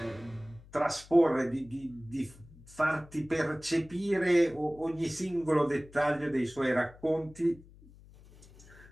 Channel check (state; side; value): noise; left; hum, 22 dB below the sound